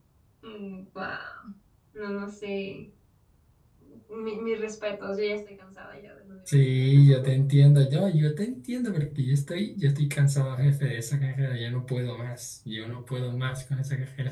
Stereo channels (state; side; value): identical; both; correlation 1.00